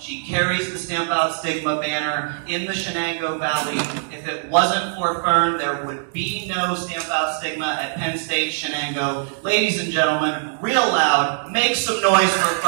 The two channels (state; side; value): silent; left; digital silence